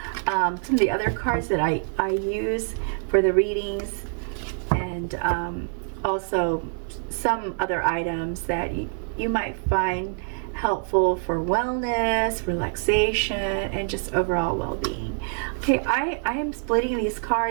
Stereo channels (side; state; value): left; silent; digital silence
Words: some of the other cards that I use for the readings, and also some other items that you might find helpful for wellness, relaxation, and just overall well-being. Okay, I am splitting these